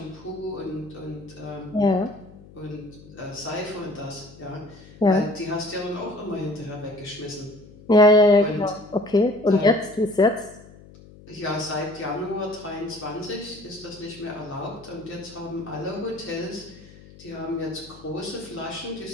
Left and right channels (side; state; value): left; noise; hum, 21 dB below the sound